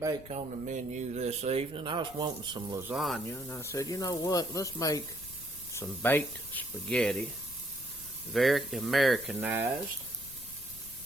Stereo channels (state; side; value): noise; left; rumble, 18 dB below the sound